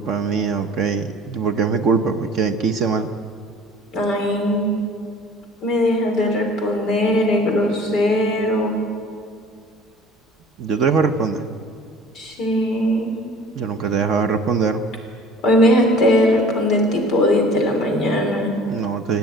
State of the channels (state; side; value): normal; both; correlation 0.47